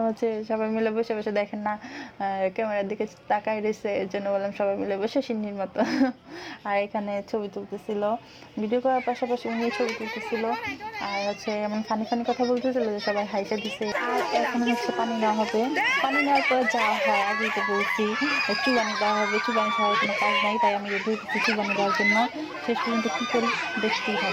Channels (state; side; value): identical; both; correlation 1.00